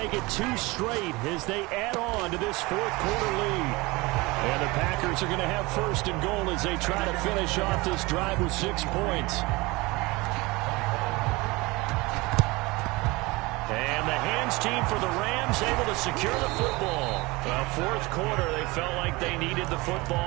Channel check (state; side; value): quieter; left; 23.1 dB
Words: it 2 straight as they add on to this fourth quarter lead. And the Packers are going to have first and goal as they try to finish off this drive with 6 points. And the hands team for the Rams able to secure the football. Well, fourth quarter, they felt like they needed the